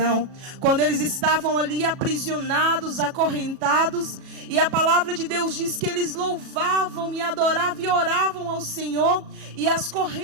quando eles estavam ali aprisionados, acorrentados, e a palavra de Deus diz que eles louvavam e adoravam e oravam ao Senhor, e as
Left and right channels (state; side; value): late; left; 37 ms